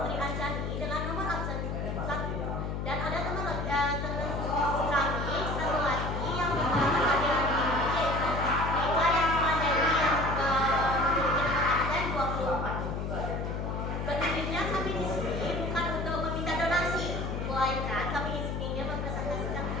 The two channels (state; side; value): noise; left; hum, 3 dB below the sound